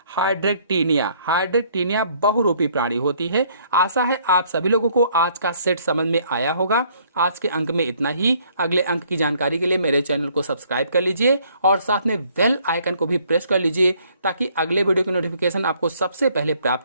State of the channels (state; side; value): inverted; both; correlation -0.64